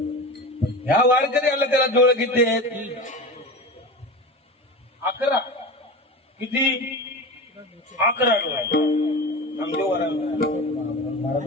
ह्या वारकऱ्याला त्याला डोळे किती आहेत? 11. किती? 11 डोळे.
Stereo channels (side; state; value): both; normal; correlation 0.28